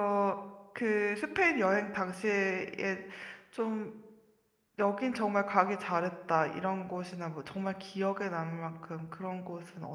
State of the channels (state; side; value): identical; both; correlation 1.00